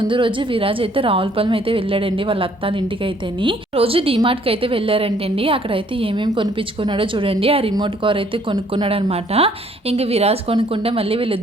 రోజు విరాజ్ అయితే రావులపాలెం అయితే వెళ్ళాడండి వాళ్ళ అత్తాల ఇంటికి అయితేని. రోజు డిమార్ట్కి అయితే వెళ్ళారంటండి. అక్కడైతే ఏమేమి కొనిపించుకున్నాడో చూడండి. ఆ రిమోట్ కార్ అయితే కొనుక్కున్నాడు అనమాట. ఇంకా విరాజ్ కొనుక్కుంటే మళ్ళీ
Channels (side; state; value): both; normal; correlation 0.62